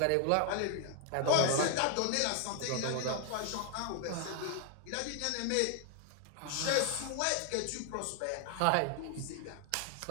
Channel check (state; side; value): different; both; correlation 0.00